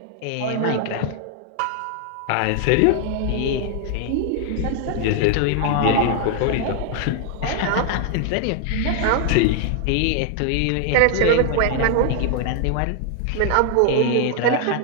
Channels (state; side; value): different; both; correlation 0.00